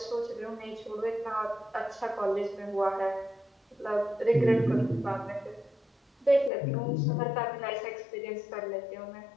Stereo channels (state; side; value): drops out; right; at 6.5 s